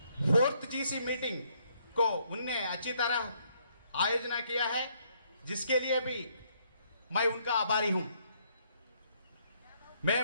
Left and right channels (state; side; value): inverted; both; correlation -0.69